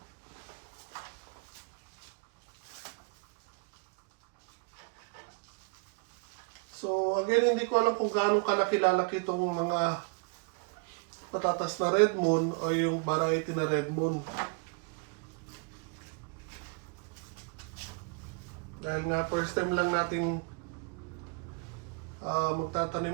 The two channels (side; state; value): left; quieter; 33.4 dB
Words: So, again, hindi ko alam kung gaano kalaki-lalaki itong mga patatas na Red Moon o yung variety na Red Moon. Dahil nga, first time lang nating